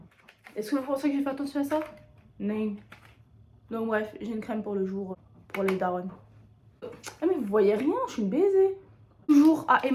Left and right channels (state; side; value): identical; both; correlation 1.00